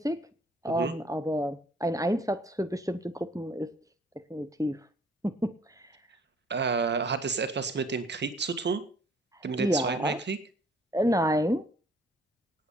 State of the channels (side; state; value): both; normal; correlation 0.58